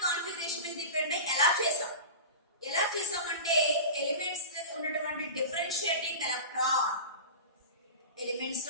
కాన్ఫిగరేషన్ మీద డిపెండ్ అయ్యి ఎలా చేసామంటే ఎలిమెంట్స్ ఉన్నటువంటి డిఫరెన్షియేటింగ్ ఎలక్ట్రాన్, ఎలిమెంట్స్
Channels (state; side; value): inverted; both; correlation -0.31